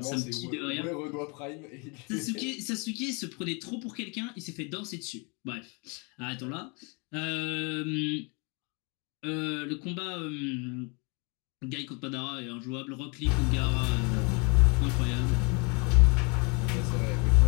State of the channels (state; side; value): quieter; right; 32.1 dB